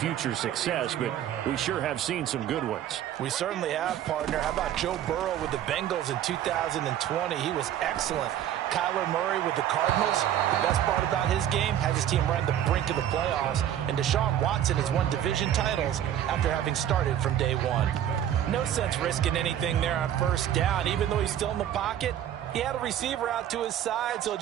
success, but we sure have seen some good ones. We certainly have, partner. How about Joe Burrow with the Bengals in 2020? He was excellent. Kyler Murray with the Cardinals. The best part about his game, had his team right on the brink of the playoffs. And Deshaun Watson has won division titles after having started from day 1. No sense risking anything there on first down. Even though he's still in the pocket, he had a receiver out to his side, so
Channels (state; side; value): quieter; left; 10.9 dB